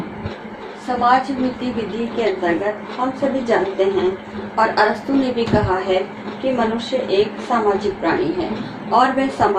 समाज नीति विधि के अंतर्गत हम सभी जानते हैं और अरस्तु ने भी कहा है कि मनुष्य एक सामाजिक प्राणी है और वह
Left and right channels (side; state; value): both; identical; correlation 1.00